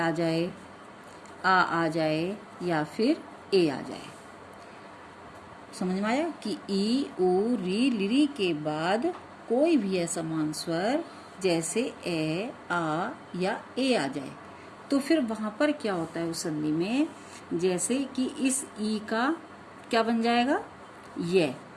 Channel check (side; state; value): both; identical; correlation 1.00